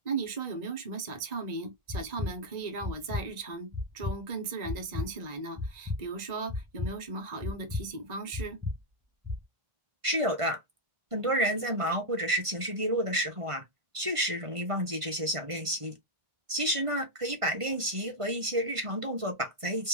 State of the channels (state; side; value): late; left; 1.5 ms